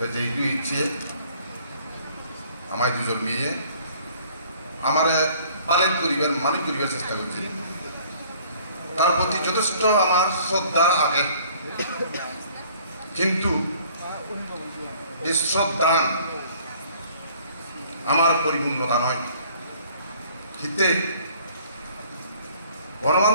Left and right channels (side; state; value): both; inverted; correlation -0.56